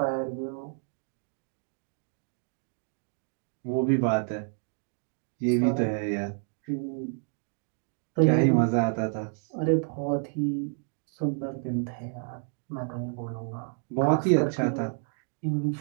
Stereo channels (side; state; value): left; silent; 57 dB below the other